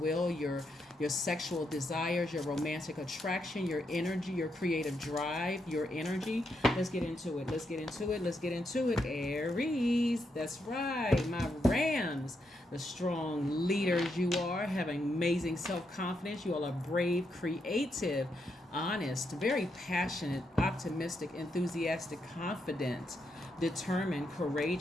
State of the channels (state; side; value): normal; both; correlation 0.81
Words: your sexual desires, your romantic attraction, your energy, your creative drive, your energy. Let's get into it. Aries. That's right. My Rams. The strong leaders you are, have amazing self-confidence. You all are brave, creative, honest, very passionate, optimistic, enthusiastic, confident, determined,